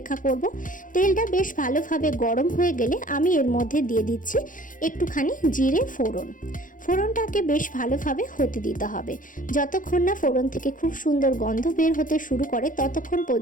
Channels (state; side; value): late; right; 0.39 ms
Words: করব। তেলটা বেশ ভালোভাবে গরম হয়ে গেলে আমি এর মধ্যে দিয়ে দিচ্ছি একটুখানি জিরে ফোড়ন। ফোড়নটাকে বেশ ভালোভাবে হতে দিতে হবে। যতক্ষণ না ফোড়ন থেকে খুব সুন্দর গন্ধ বের হতে শুরু করে ততক্ষণ